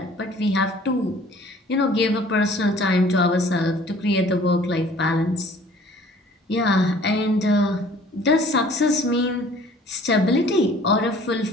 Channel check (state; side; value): normal; both; correlation 0.52